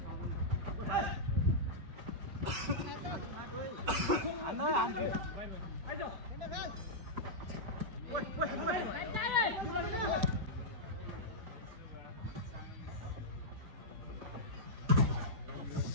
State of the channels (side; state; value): left; late; 5.3 ms